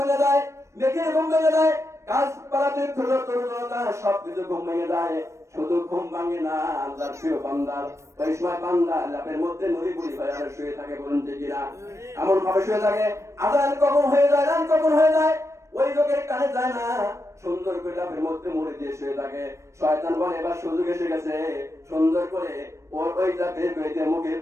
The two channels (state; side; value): late; left; 0.14 ms